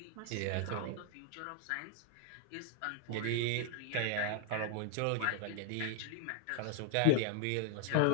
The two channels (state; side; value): different; both; correlation 0.00